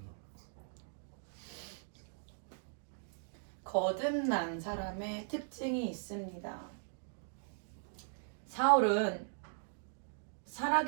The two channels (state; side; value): silent; left; digital silence